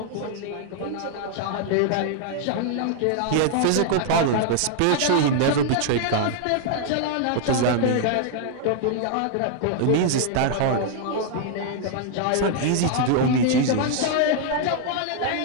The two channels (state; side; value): different; both; correlation 0.00